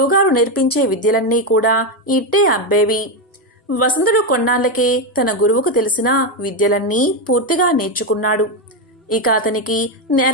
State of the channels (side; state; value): both; normal; correlation 0.08